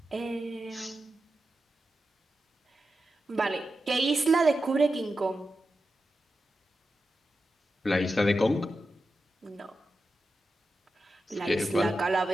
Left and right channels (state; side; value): normal; both; correlation 0.90